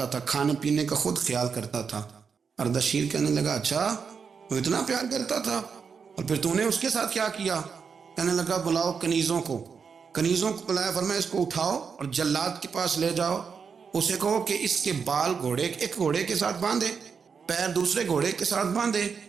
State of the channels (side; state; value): left; quieter; 6.0 dB